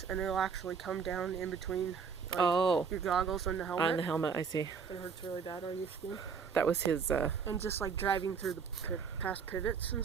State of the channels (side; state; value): left; quieter; 6.0 dB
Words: and it'll actually come down in between your goggles and the helmet. On the helmet, I see. It hurts really bad on your skin. That was his, And just like driving through the past pivots and